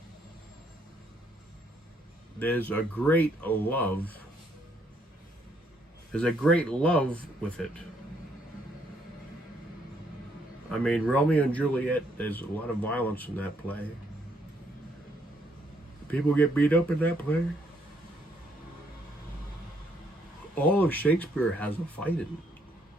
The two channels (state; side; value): normal; both; correlation 0.70